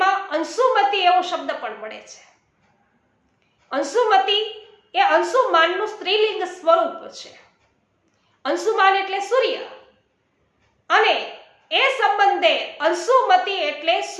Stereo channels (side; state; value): both; identical; correlation 1.00